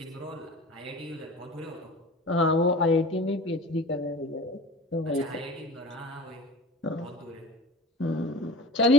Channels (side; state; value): both; normal; correlation 0.37